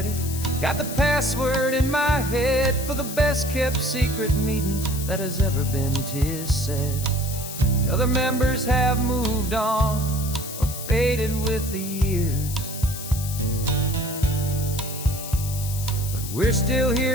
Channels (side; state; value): left; noise; hiss, 9 dB below the sound